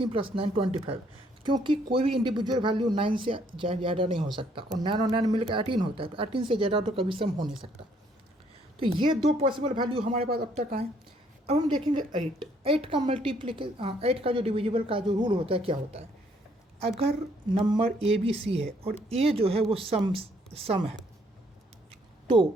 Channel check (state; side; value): normal; both; correlation 0.66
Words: + 9 25, क्योंकि कोई भी इंडिविजुअल वैल्यू 9 से ज़्यादा नहीं हो सकता, और 9 और 9 मिलकर 18 होता है, तो 18 से ज़्यादा तो कभी सम हो नहीं सकता। तो ये 2 पॉसिबल वैल्यू हमारे पास अब तक आए। अब हम देखेंगे 8 का मल्टीप्लिकेशन, 8 का जो डिविजिबल का जो रूल होता है क्या होता है, अगर नंबर ए बी सी है और ए जो है वो सम है,